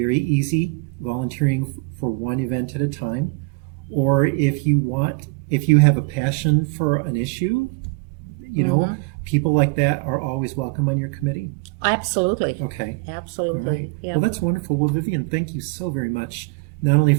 easy, volunteering for one event at a time, or if you have a passion for an issue, people like that are always welcome on your committee. Absolutely. Okay. Absolutely. All right. Yeah. Well, that's wonderful. Well, Vivian, thank you so very much, not only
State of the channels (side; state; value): left; quieter; 27.5 dB